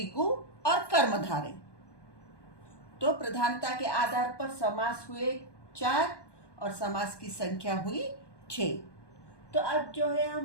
और कर्मधारय। तो प्रधानता के आधार पर समास हुए 4 और समास की संख्या हुई 6। तो अब जो है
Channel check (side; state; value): right; late; 1.2 ms